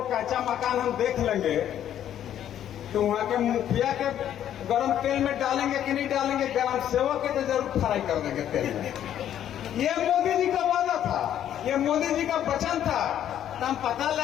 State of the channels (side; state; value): right; quieter; 10.7 dB